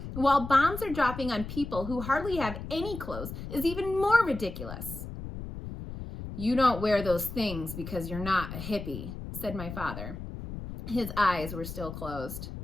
while bombs are dropping on people who hardly have any clothes is even more ridiculous. You don't wear those things because you're not a hippie, said my father. His eyes were still closed.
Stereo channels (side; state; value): left; noise; rumble, 9 dB below the sound